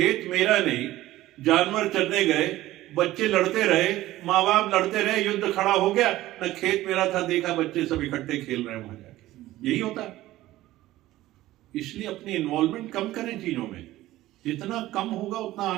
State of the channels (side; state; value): left; quieter; 16.0 dB